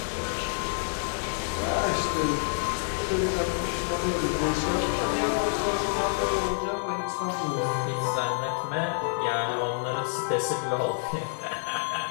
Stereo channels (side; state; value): right; silent; digital silence